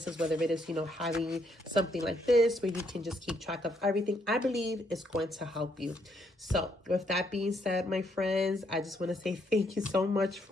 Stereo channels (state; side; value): normal; both; correlation 0.73